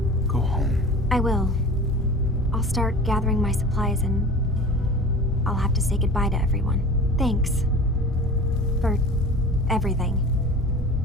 Go home. I will. I'll start gathering my supplies and I'll have to say goodbye to everyone. Thanks. For everything.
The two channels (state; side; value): normal; both; correlation 0.38